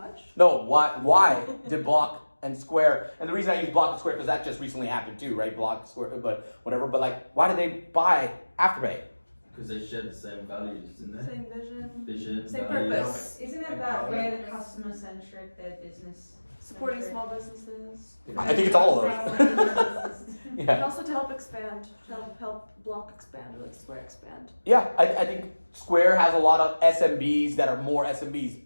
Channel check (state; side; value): inverted; both; correlation -1.00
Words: No, why did Block and Square, and the reason I use Block and Square, because that just recently happened too, right? Block, Square, but whatever. But like, why did they buy Afterpay? Because they share the same values, didn't they? Same vision. Vision, Same values. purpose. Isn't it that way the customer centric, their business? Supporting small businesses. I think it's all of those. And Yeah, also to help expand, to help Block expand, or like Square expand. yeah. I think Square has a lot of SMBs that are more SMBs.